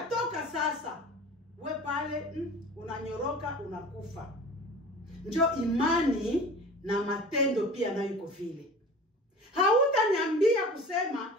toka sasa, we pale unanyoroka, unakufa. Njo imani na matendo pia nayo iko vile. Hautaniambia kusema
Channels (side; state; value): both; normal; correlation 0.39